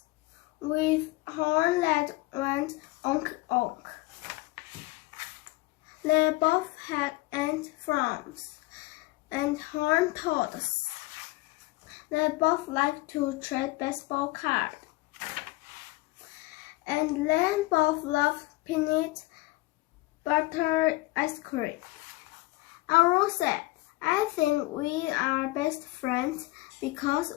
with horns that went onk onk. They both had ant farms and horned toads. They both liked to trade baseball cards. And they both loved peanut butter ice cream. Arrow said, "I think we are best friends because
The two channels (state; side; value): quieter; right; 20.6 dB